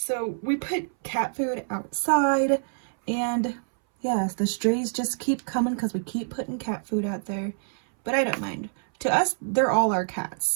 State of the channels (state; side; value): silent; left; 61 dB below the other